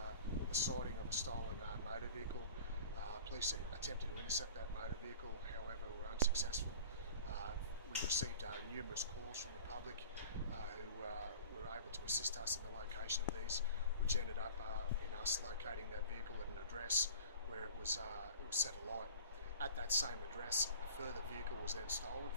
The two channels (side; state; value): both; inverted; correlation -0.42